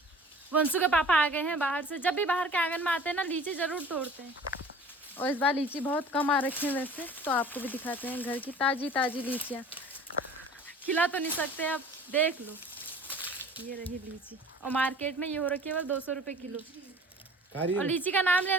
वंशु के पापा आ गए हैं बाहर से। जब भी बाहर के आंगन में आते हैं ना, लीची ज़रूर तोड़ते हैं। और इस बार लीची बहुत कम आ रखी है वैसे, तो आपको भी दिखाते हैं घर की ताज़ी ताज़ी लीचियाँ। खिला तो नहीं सकते, अब देख लो। ये रही लीची, और मार्केट में ये हो रखी है बस 200 रुपये किलो। और लीची का नाम ले,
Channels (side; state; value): both; normal; correlation 0.45